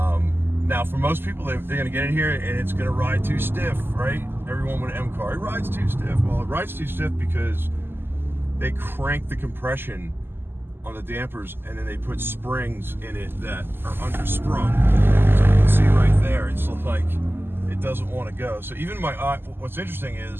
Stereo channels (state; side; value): late; left; 0.10 ms